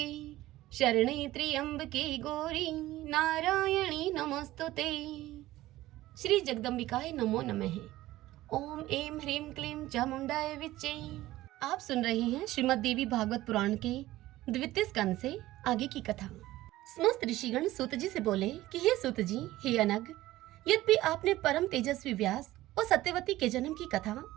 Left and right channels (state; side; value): quieter; left; 16.3 dB